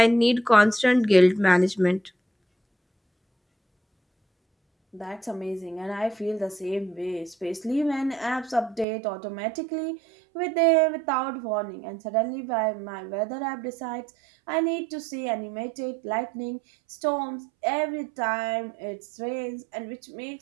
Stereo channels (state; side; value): drops out; left; at 8.8 s